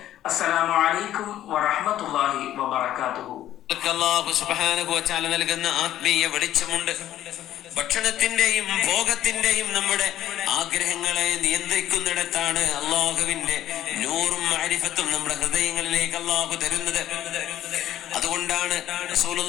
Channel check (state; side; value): quieter; right; 12.4 dB